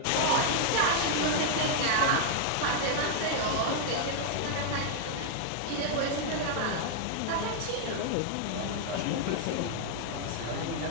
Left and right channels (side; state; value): both; different; correlation 0.00